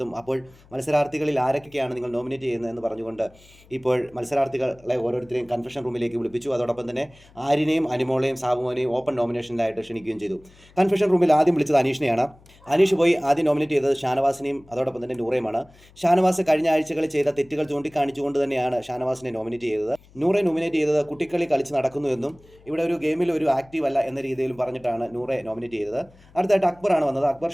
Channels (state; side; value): noise; left; hum, 27 dB below the sound